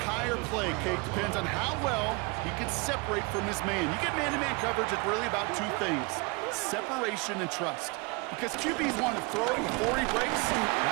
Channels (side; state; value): left; quieter; 28.4 dB